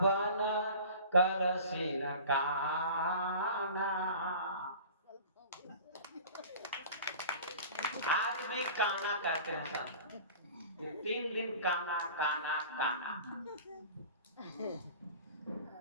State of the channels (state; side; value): inverted; both; correlation -0.41